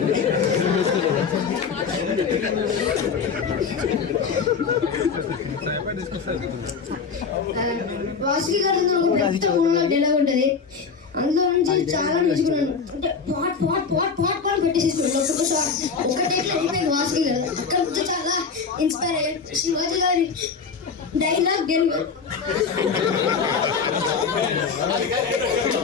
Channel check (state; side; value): quieter; right; 5.6 dB